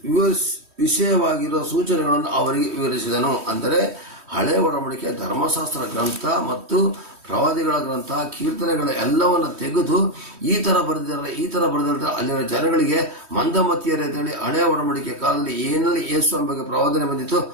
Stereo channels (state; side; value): late; left; 3.1 ms